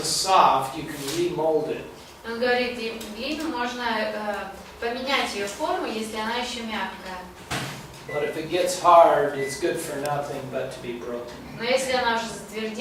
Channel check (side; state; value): both; identical; correlation 1.00